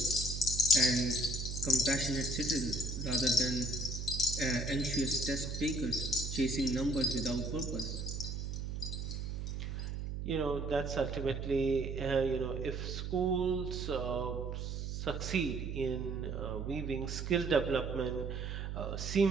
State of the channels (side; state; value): right; noise; hum, 4 dB below the sound